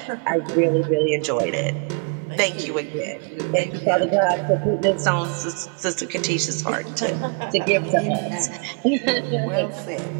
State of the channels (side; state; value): left; quieter; 38.9 dB